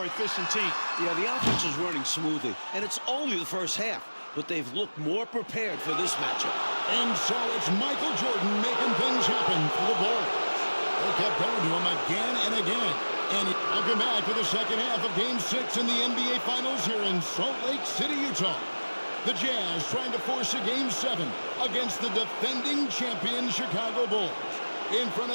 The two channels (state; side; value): inverted; both; correlation -1.00